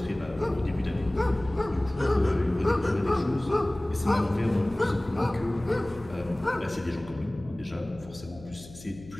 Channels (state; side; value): noise; left; hum, 18 dB below the sound